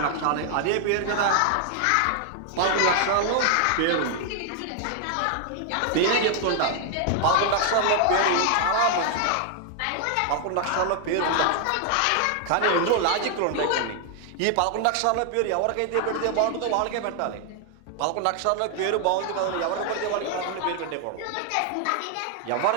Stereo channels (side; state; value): both; different; correlation 0.00